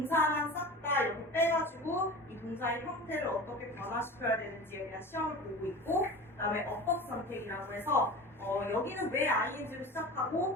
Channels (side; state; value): both; normal; correlation 0.34